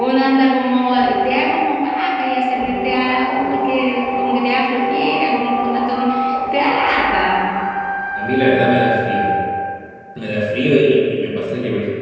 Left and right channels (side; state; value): both; identical; correlation 1.00